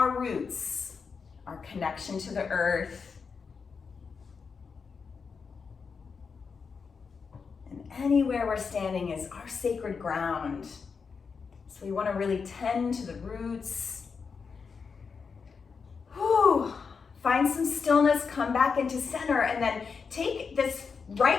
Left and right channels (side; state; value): right; quieter; 5.5 dB